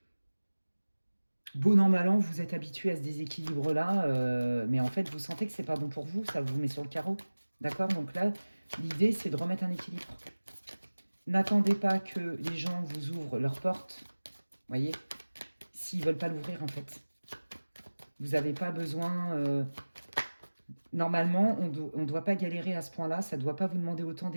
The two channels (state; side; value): inverted; both; correlation -1.00